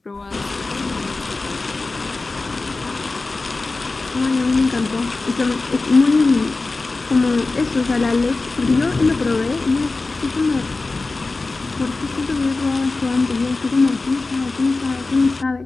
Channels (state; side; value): quieter; right; 3.5 dB